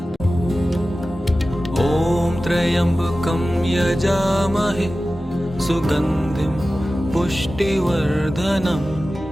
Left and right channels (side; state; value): both; normal; correlation 0.95